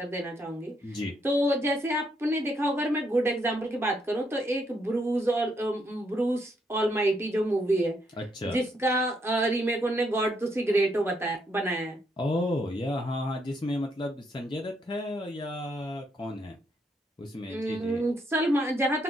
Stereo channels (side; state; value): both; normal; correlation 0.75